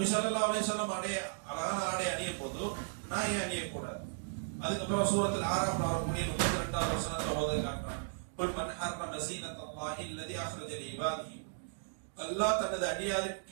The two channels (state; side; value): silent; left; digital silence